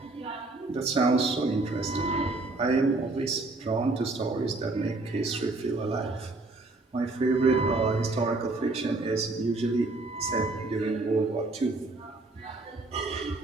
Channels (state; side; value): quieter; left; 3.2 dB